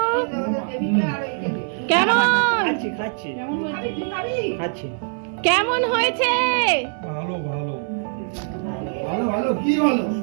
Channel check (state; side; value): silent; left; 62 dB below the other